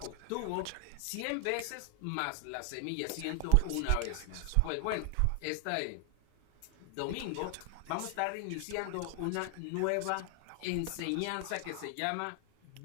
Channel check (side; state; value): both; different; correlation 0.00